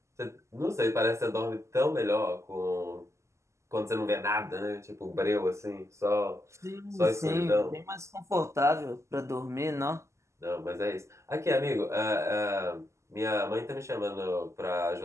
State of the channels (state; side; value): late; left; 0.14 ms